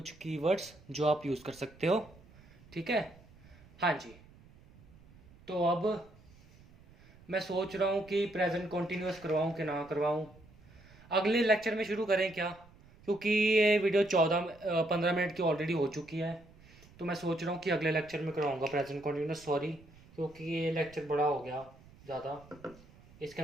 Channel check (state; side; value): noise; right; rumble, 24 dB below the sound